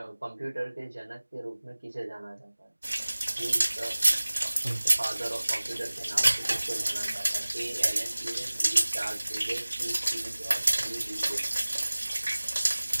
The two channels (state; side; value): inverted; both; correlation -1.00